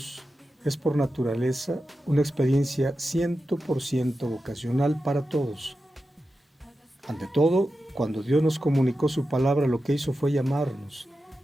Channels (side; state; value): both; normal; correlation 0.91